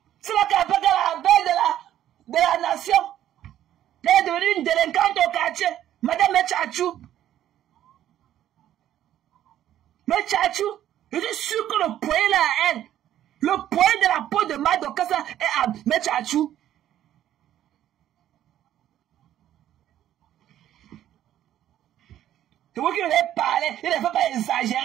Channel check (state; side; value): quieter; left; 11.8 dB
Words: C'est là qu'elle appelle la belle de la nation. Elle est devenue une délinquante au quartier. Madame Metchachou. Metchachou. Je suis sûr que le poing là à elle. Le poing de la peau de Marie Dorcas est à Metchachou. C'est vous qui devez parler, il ne faut pas